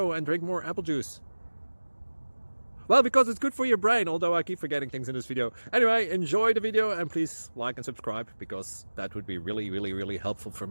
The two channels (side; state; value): both; inverted; correlation -1.00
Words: and drink more apple juice? Well, because it's good for your brain, although I keep forgetting things in this video. Anyway, enjoy the video and please like and subscribe, because that would be really helpful for